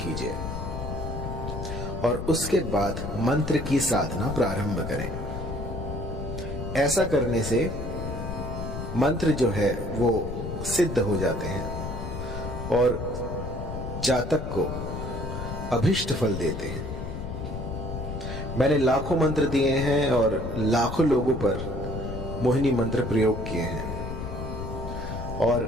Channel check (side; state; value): left; noise; rumble, 6 dB below the sound